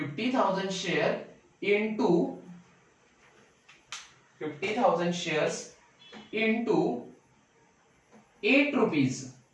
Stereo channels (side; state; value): both; identical; correlation 1.00